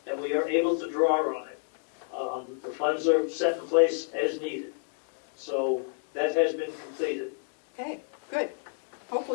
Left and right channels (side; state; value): right; silent; 58 dB below the other